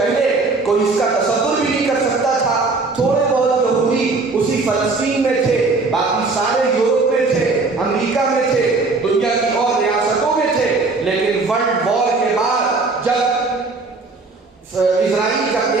کوئی اس کا تصور بھی نہیں کر سکتا تھا۔ تھوڑے بہت یہودی اسی فلسطین میں تھے، باقی سارے یورپ میں تھے، امریکہ میں تھے، دنیا کی اور ریاستوں میں تھے، لیکن ورلڈ وار کے بعد جب اسرائیل کا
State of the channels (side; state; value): left; quieter; 3.8 dB